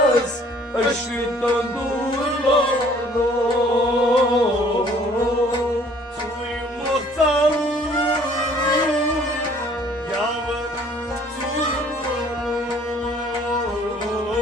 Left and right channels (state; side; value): normal; both; correlation 0.57